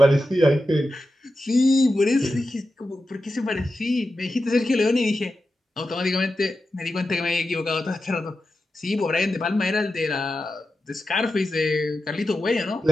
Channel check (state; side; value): normal; both; correlation 0.91